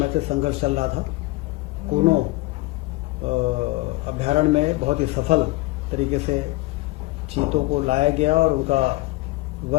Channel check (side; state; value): right; quieter; 20.9 dB